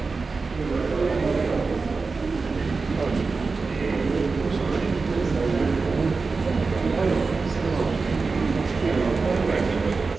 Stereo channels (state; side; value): quieter; left; 4.3 dB